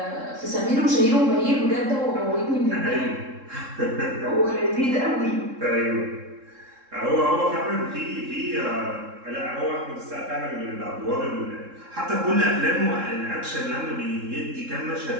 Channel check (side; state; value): left; late; 3.7 ms